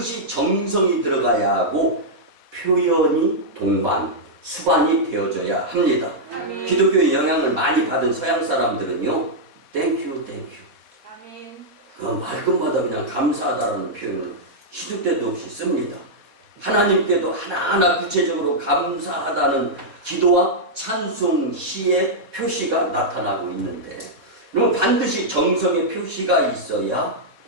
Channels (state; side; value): late; left; 4.1 ms